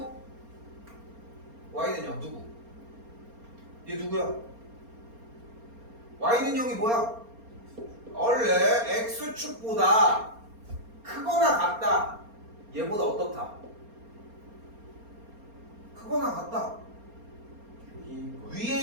y는 0 누구? 얘 누구야? y는 0이 뭐야? 원래 x축보다 크거나 같다. 얘보다 어떻다? 크거나 같다.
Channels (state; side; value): late; left; 4.3 ms